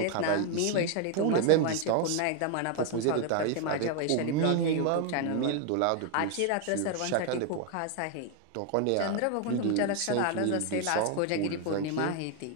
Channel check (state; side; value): different; both; correlation 0.01